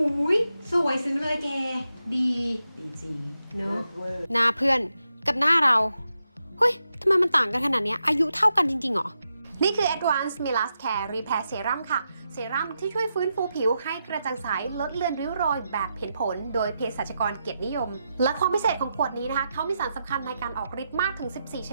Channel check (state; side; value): inverted; both; correlation -0.86